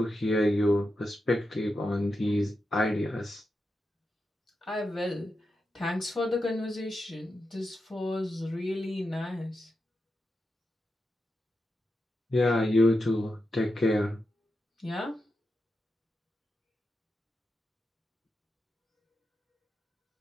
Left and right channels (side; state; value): both; normal; correlation 0.88